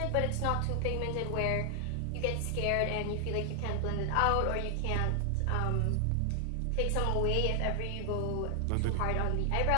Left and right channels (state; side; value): different; both; correlation 0.00